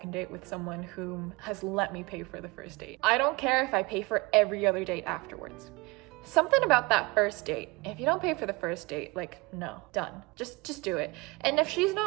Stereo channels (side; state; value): left; quieter; 25.0 dB